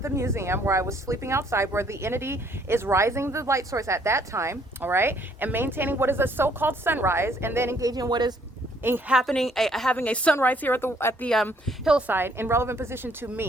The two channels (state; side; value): normal; both; correlation 0.64